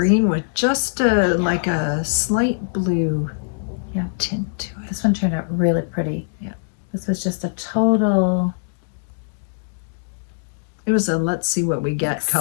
with just like a slight blue tint to it. This one turned out really pretty. Yeah. This was just a total. It was a let's see what we get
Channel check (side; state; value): right; silent; digital silence